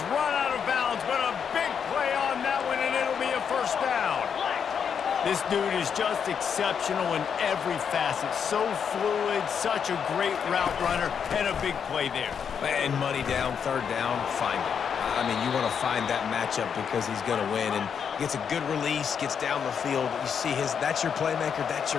run out of bounds, but a big play on that one, and it'll be a first down. This dude is just exceptional in every facet. So fluid, such a great route runner, and a big play there. And money down, third down, find it. I mean, you want to find that matchup because he's going to win, and gets a good release, gets down the field. You see that's your playmaker, that's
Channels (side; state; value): right; quieter; 7.2 dB